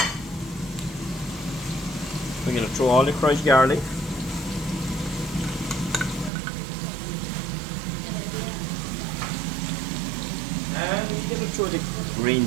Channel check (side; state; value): left; drops out; at 6.3 s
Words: We're going to throw all the crushed garlic. And we're going to throw the green